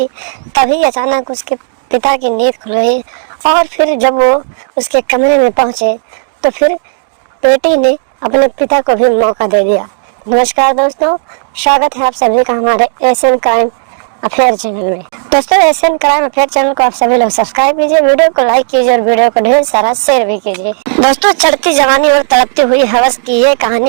तभी अचानक उसके पिता की नींद खुल गई और फिर जब वो उसके कमरे में पहुंचे तो फिर बेटी ने अपने पिता को भी मौका दे दिया। नमस्कार दोस्तों, स्वागत है आप सभी का हमारे एशियन क्राइम अफेयर चैनल में। दोस्तों, एशियन क्राइम अफेयर चैनल को आप सभी लोग सब्सक्राइब कीजिए, वीडियो को लाइक कीजिए और वीडियो को ढेर सारा शेयर भी कीजिए। दोस्तों, चढ़ती जवानी और तड़पती हुई हवस की ये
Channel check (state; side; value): silent; left; digital silence